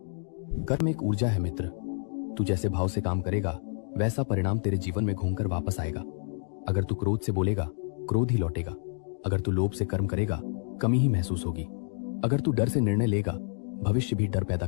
कर्म एक ऊर्जा है मित्र। तू जैसे भाव से काम करेगा, वैसा परिणाम तेरे जीवन में घूमकर वापस आएगा। अगर तू क्रोध से बोलेगा, क्रोध ही लौटेगा। अगर तू लोभ से कर्म करेगा, कमी ही महसूस होगी। अगर तू डर से निर्णय लेगा, भविष्य भी डर पैदा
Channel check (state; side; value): silent; right; digital silence